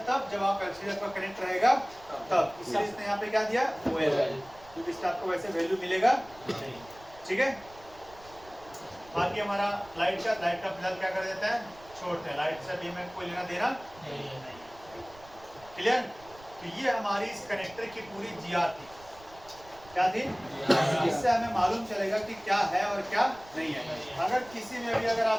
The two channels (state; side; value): noise; right; rumble, 23 dB below the sound